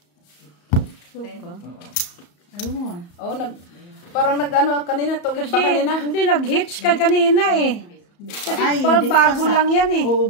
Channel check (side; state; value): right; late; 34 ms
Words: Suka. Ayun. Oo, parang nag-ano kanina to. Kasi Ba kanina? hindi nag-hits ka kanina eh. Kasi Ay, parang hindi pa bago sa- lang yan eh.